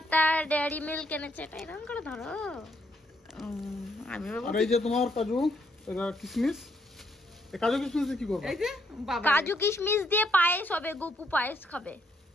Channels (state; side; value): normal; both; correlation 0.73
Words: একটা ডেয়ারি মিল্ক এনেছে, এটা এরকম করে ধরো। আমি আর এই যে তোমার কাজু এটা কিশমিশ, এই কাজু কিশমিশ দিয়ে কি করবা? এই যে বাবা কাজু কিশমিশ দিয়ে পায়েস হবে, গোপু পায়েস খাবে।